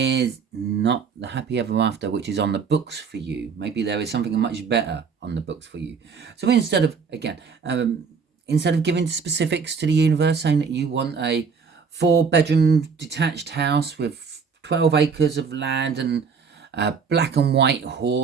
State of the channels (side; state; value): left; quieter; 5.6 dB